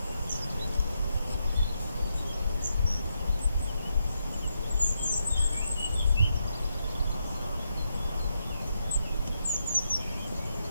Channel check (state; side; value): inverted; both; correlation -0.82